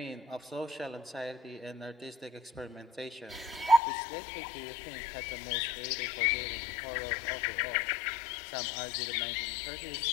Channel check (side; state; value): right; drops out; at 3.8 s